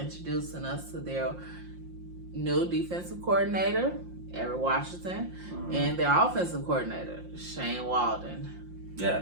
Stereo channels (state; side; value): late; left; 5.7 ms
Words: us to their new defensive coordinator, Eric Washington, and their offensive coordinator, Shane Waldron.